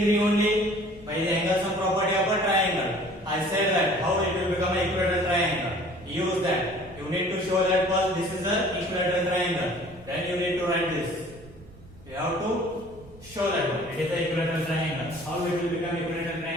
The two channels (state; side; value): noise; right; rumble, 22 dB below the sound